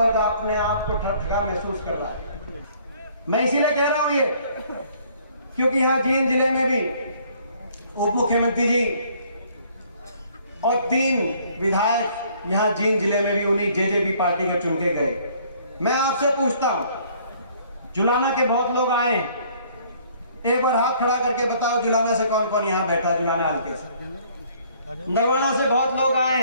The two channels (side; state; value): both; inverted; correlation -0.60